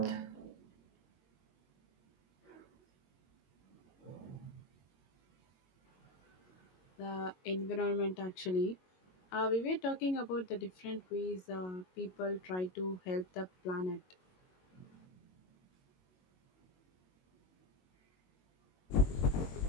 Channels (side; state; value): right; late; 22 ms